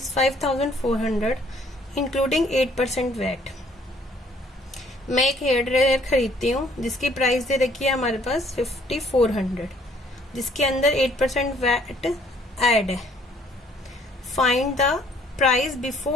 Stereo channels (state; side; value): normal; both; correlation 0.62